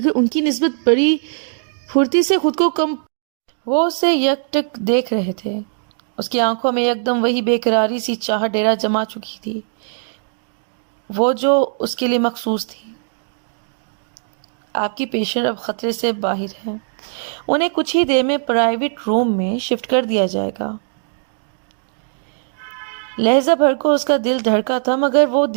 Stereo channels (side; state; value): left; silent; digital silence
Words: ان کی نسبت بڑی پھرتی سے خود کو کم وہ اسے یک ٹک دیکھ رہے تھے. اس کی آنکھوں میں یکدم وہی بے قراری سی چاہ ڈیرا جما چکی تھی، وہ جو اس کے لیے مخصوص تھی. آپ کی پیشنٹ اب خطرے سے باہر ہے، انہیں کچھ ہی دیر میں پرائیویٹ روم میں شفٹ کر دیا جائے گا. لہجہ بھر کو اس کا دل دھڑکا تھا مگر وہ